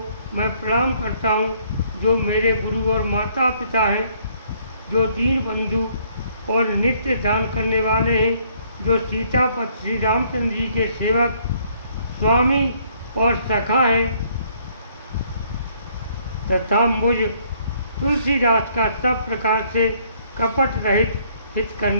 मैं प्रणाम करता हूँ, जो मेरे गुरु और माता पिता हैं, जो दीन बंधु और नित्य दान करने वाले हैं, जो सीतापति श्री रामचंद्र जी के सेवक स्वामी और सखा हैं, तथा मुझ तुलसीदास का सब प्रकार से कपट रहित हित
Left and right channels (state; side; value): inverted; both; correlation -0.65